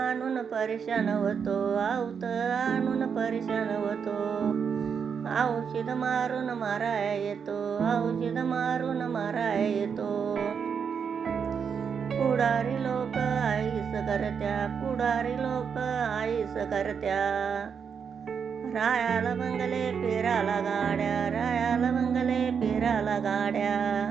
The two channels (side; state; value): left; quieter; 6.7 dB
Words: परेशान होतो, आवत आणून परेशान होतो. औषध मारून माराया येतो, औषध मारून माराया येतो. पुढारी लोक आईस करत्या, पुढारी लोक आईस करत्या. रायाला बंगले पेराला गाड्या, रायाला बंगले पेराला गाड्या.